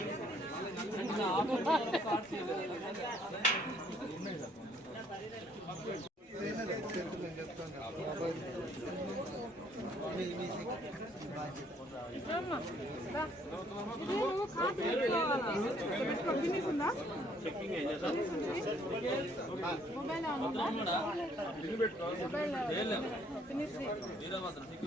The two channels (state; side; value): normal; both; correlation 0.64